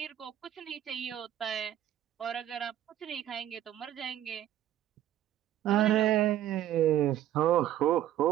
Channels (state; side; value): quieter; left; 12.2 dB